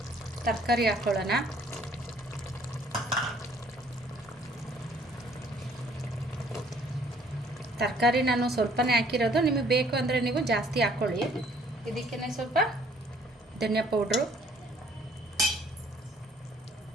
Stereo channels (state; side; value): normal; both; correlation 0.60